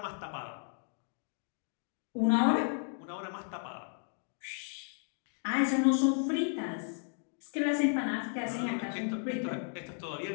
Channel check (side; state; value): right; silent; 55 dB below the other